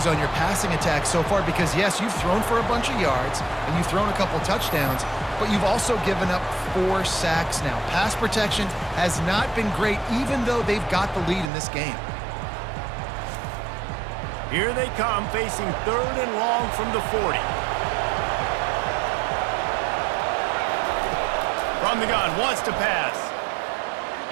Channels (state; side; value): drops out; left; at 11.5 s